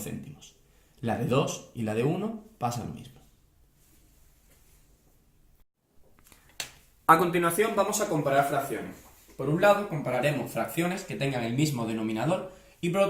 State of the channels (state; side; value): identical; both; correlation 1.00